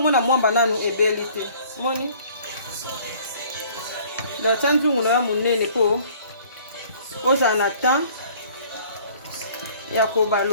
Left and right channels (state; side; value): inverted; both; correlation -0.54